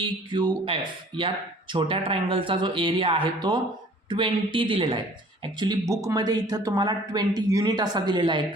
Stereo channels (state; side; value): normal; both; correlation 0.52